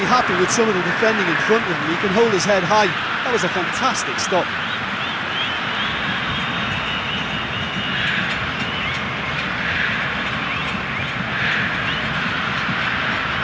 happy with some of the defending in front of him, he can hold his head high. That was a fantastic stop.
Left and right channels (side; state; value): both; identical; correlation 1.00